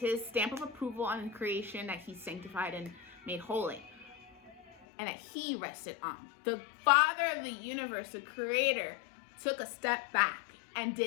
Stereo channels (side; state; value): right; drops out; at 4.9 s